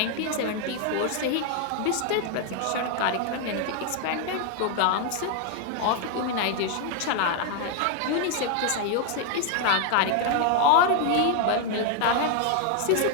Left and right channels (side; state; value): both; different; correlation 0.01